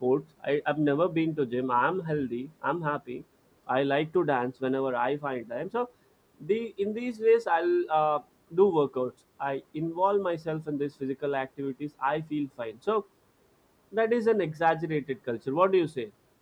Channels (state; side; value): identical; both; correlation 1.00